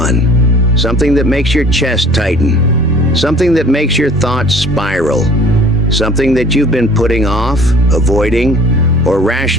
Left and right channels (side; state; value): both; normal; correlation 0.50